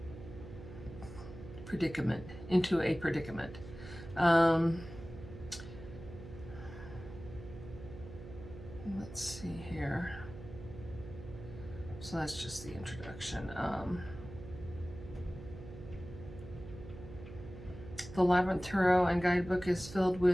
into a predicament. Let's see here. So that's just the introduction. The Labyrinth Tarot and Guidebook is filled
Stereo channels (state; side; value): noise; right; hum, 13 dB below the sound